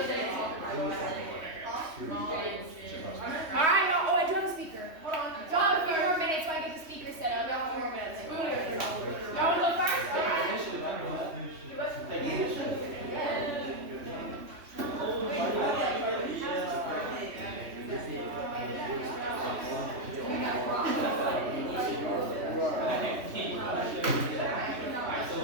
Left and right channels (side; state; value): left; late; 3.1 ms